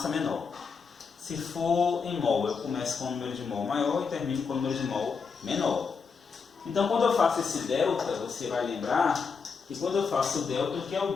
menor. Se for em mol, eu começo com o número de mol maior e termino com o número de mol menor. Então, quando eu faço esse delta, você vai lembrar que quando eu faço o delta, o que é o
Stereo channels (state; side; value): quieter; right; 5.4 dB